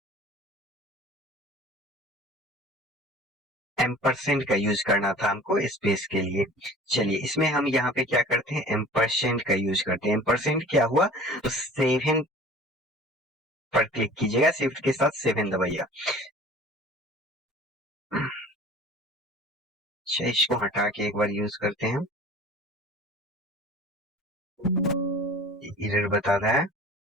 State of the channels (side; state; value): both; normal; correlation 0.44